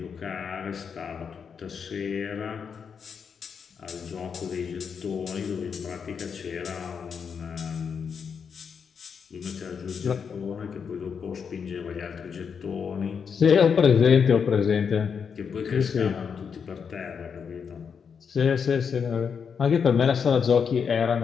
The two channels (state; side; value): quieter; right; 6.5 dB